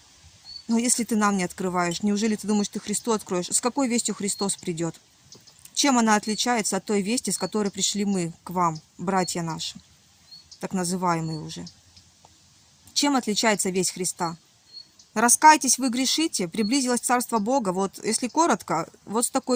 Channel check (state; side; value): identical; both; correlation 1.00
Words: Но если ты нам не открываешь, неужели ты думаешь, ты Христу откроешь? С какой вестью Христос придет? Чем она отличается от той вести, с которой пришли мы к вам, братья наши, так называемые уже? Чем отличается весть Христа? Раскайтесь, вы грешите, приблизилось Царство Бога. Вот если коротко, вот с